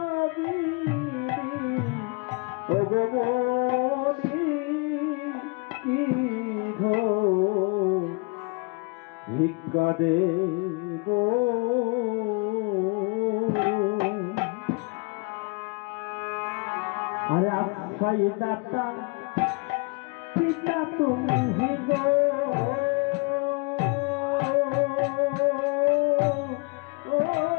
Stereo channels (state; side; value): quieter; right; 30.9 dB